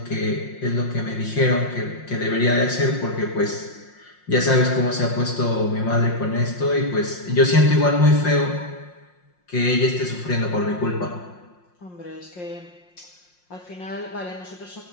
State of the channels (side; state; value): right; late; 5.6 ms